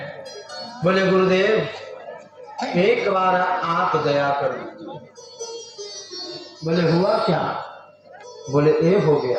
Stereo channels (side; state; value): both; identical; correlation 1.00